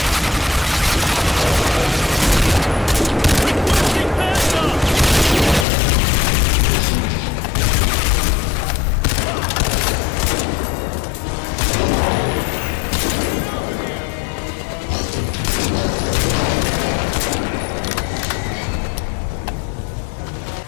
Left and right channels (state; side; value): drops out; right; at 5.7 s